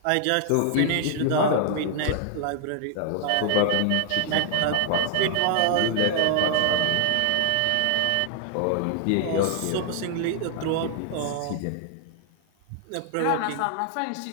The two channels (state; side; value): different; both; correlation 0.00